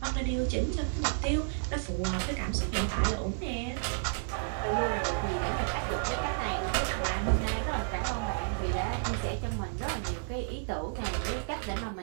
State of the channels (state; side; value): silent; left; digital silence